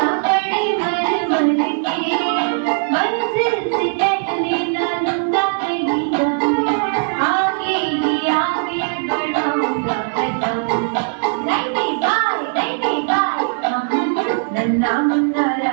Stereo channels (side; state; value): left; silent; digital silence